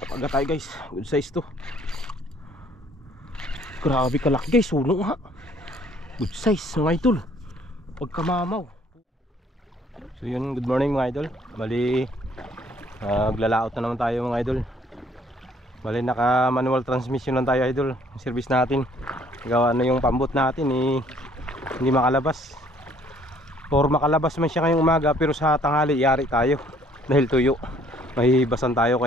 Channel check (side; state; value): both; normal; correlation 0.61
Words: tayo guys. Good size to. Grabe kalaki guys. Suno ha. Good size mga idol. Pagkamamaw. So yun, good morning mga idol. Bali maglalaot na naman tayo mga idol. Bali naka manual transmission lang tayo idol. Yung service natin, gawa na yung pambot natin hindi makalabas. Or makalabas man siya ngayong umaga, pero sa tanghali yari tayo dahil tuyo. Mahihibasan tayo,